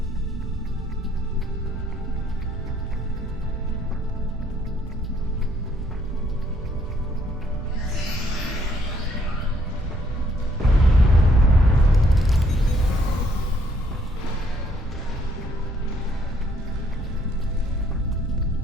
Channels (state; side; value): normal; both; correlation 0.67